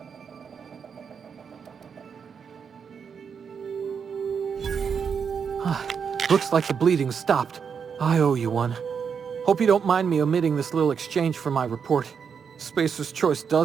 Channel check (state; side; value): quieter; left; 6.6 dB